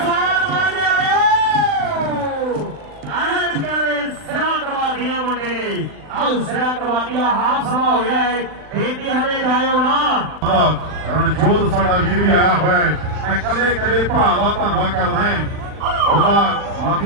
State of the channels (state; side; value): late; left; 39 ms